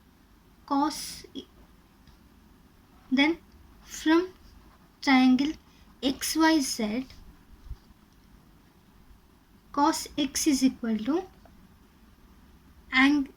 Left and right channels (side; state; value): both; identical; correlation 1.00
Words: cos, then from triangle XYZ, cos X is equal to